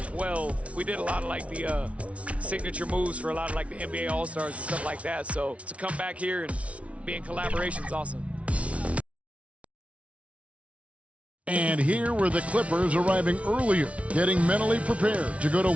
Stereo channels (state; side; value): late; left; 0.063 ms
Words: we did a lot of like the signature moves for a lot of like the NBA All-Stars and stuff like that. So to come back here and be in collaboration is awesome. And here were the Clippers arriving earlier, getting mentally prepared to go to